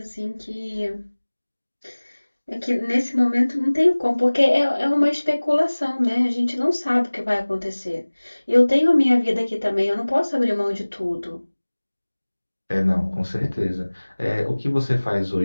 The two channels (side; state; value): both; inverted; correlation -1.00